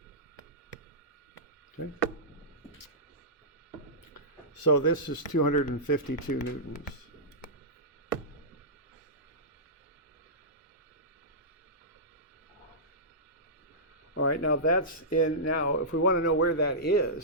Okay. So this is 252 newtons. All right, now that's in, now if we want to know where that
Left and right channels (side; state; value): both; normal; correlation -0.16